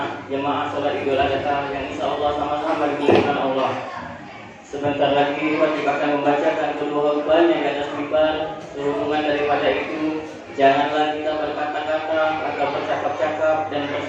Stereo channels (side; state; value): both; identical; correlation 1.00